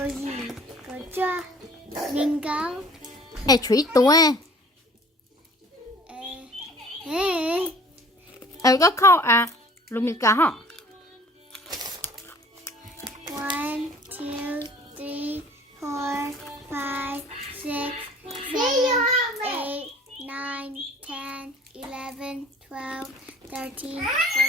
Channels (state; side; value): normal; both; correlation 0.50